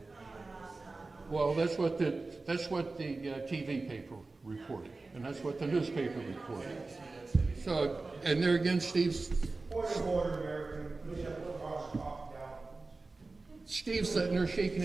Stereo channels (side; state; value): left; quieter; 3.6 dB